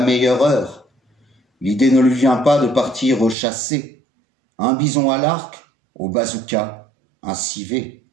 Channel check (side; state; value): left; drops out; at 3.4 s